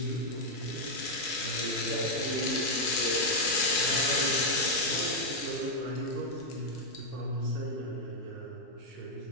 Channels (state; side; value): normal; both; correlation 0.00